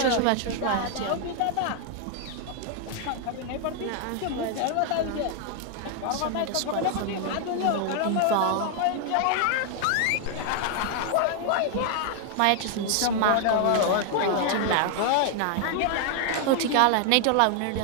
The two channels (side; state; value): both; different; correlation 0.00